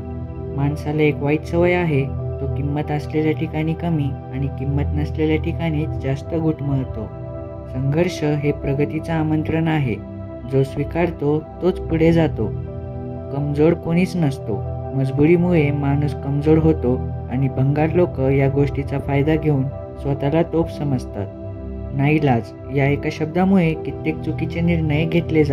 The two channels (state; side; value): identical; both; correlation 1.00